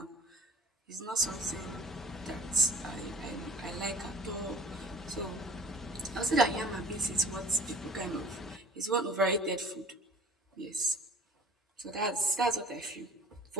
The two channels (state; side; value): normal; both; correlation 0.46